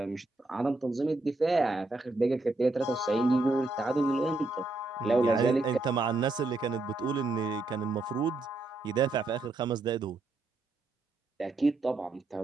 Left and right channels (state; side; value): quieter; left; 3.2 dB